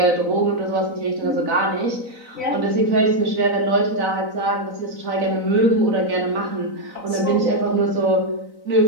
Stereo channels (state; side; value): late; left; 4.0 ms